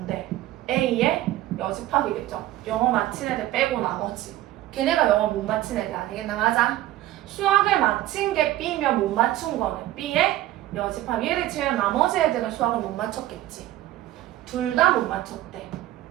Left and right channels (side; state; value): left; quieter; 14.9 dB